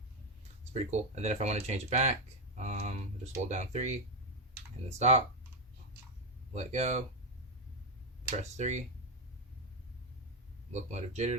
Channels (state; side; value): normal; both; correlation 0.07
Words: it's pretty cool. And then if I want to change it back, just hold down 3. And then stop. Let go. Press 3. Locomotive